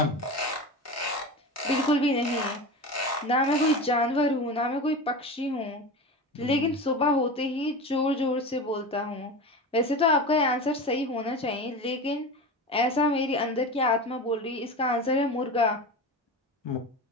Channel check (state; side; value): normal; both; correlation 0.28